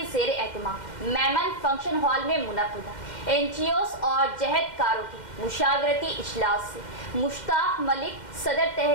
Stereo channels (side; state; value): right; late; 2.1 ms